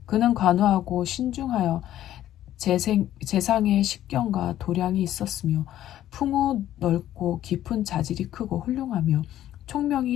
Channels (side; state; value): right; quieter; 12.6 dB